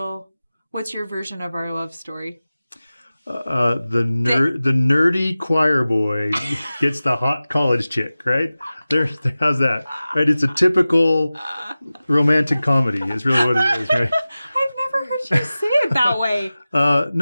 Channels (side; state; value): both; inverted; correlation -0.96